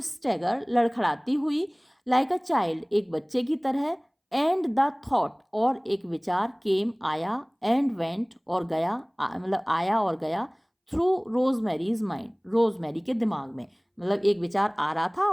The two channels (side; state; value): both; identical; correlation 1.00